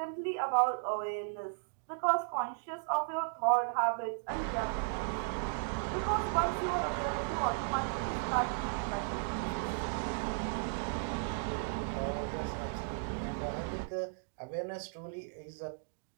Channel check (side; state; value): left; silent; digital silence